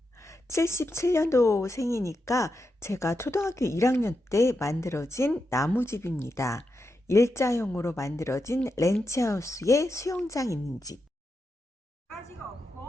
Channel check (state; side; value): normal; both; correlation 0.86